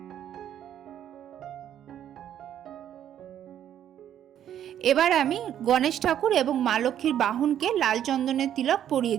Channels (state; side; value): quieter; left; 10.4 dB